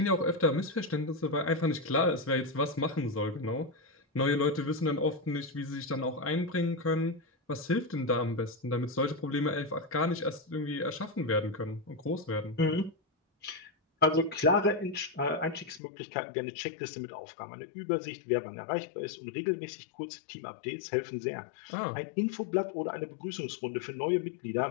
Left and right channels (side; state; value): right; drops out; at 15.8 s